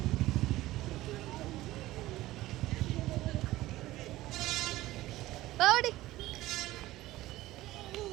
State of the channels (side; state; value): left; quieter; 16.8 dB